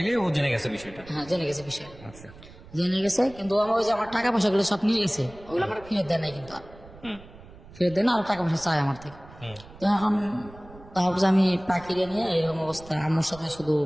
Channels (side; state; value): right; noise; rumble, 20 dB below the sound